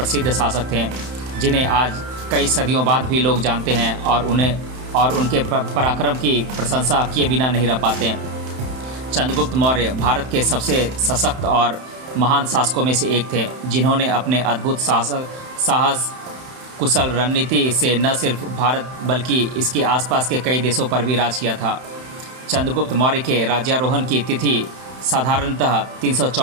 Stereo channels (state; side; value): late; left; 31 ms